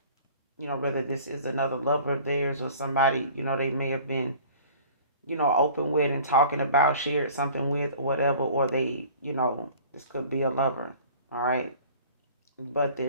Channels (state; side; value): inverted; both; correlation -0.47